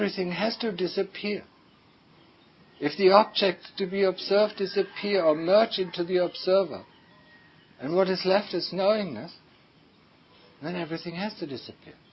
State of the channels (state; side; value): identical; both; correlation 1.00